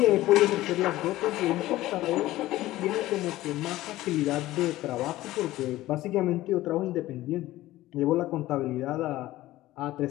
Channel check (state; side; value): quieter; right; 16.3 dB